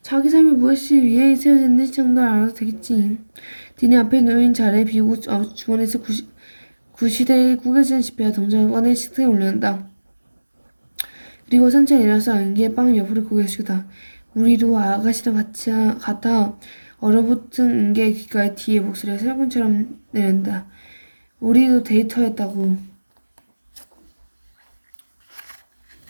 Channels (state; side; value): inverted; both; correlation -1.00